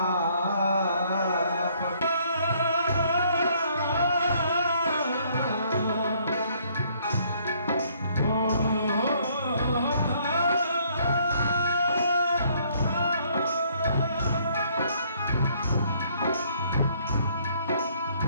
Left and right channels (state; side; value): inverted; both; correlation -0.65